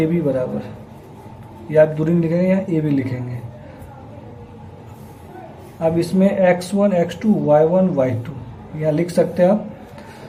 बी बराबर, या आप दूरी लिखेंगे या ए बी लिखेंगे। अब इसमें x1 x2 y1 y2 यहाँ लिख सकते हैं आप।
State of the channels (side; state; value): both; identical; correlation 1.00